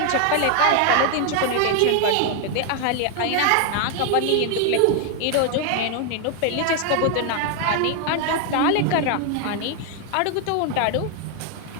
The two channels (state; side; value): different; both; correlation 0.00